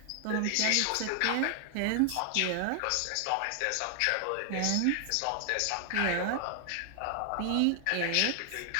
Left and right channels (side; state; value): both; different; correlation 0.00